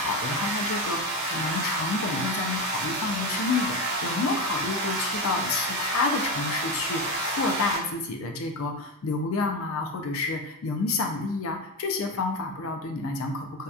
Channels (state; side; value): normal; both; correlation 0.17